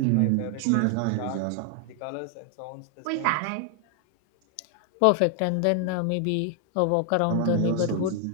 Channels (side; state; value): both; different; correlation 0.00